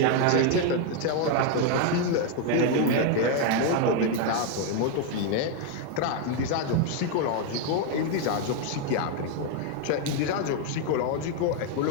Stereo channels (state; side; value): different; both; correlation 0.01